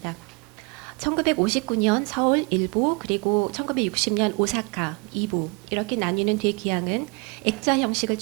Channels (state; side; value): quieter; left; 31.1 dB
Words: 1959년 서울 1부 그리고 1960년 오사카 2부 이렇게 나뉘는 되기항은 액자 형식을